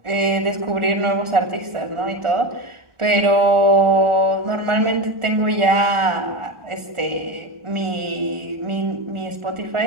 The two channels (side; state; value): left; late; 1.4 ms